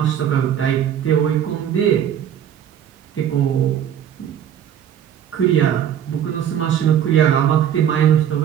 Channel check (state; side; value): quieter; left; 9.6 dB